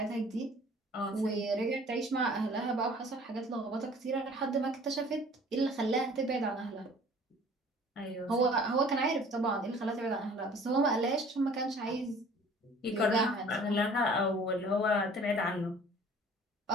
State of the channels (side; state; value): both; normal; correlation 0.50